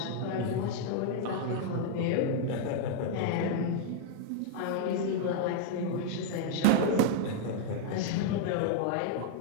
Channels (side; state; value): both; different; correlation 0.00